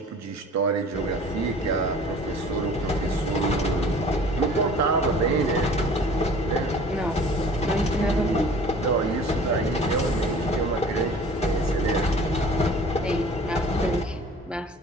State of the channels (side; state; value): both; normal; correlation 0.47